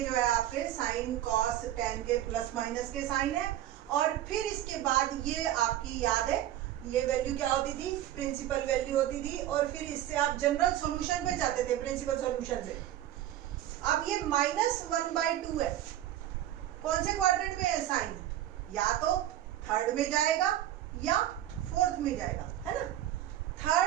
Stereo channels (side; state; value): left; quieter; 12.7 dB